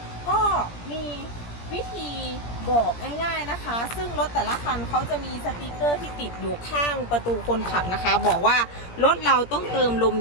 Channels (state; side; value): late; right; 17 ms